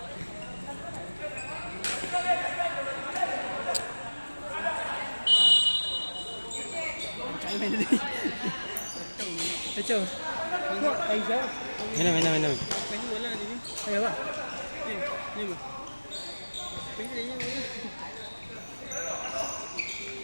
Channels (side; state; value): both; inverted; correlation -1.00